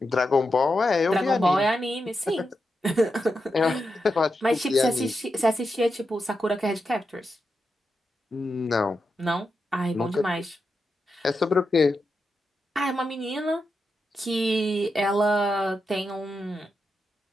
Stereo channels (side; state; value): both; normal; correlation 0.87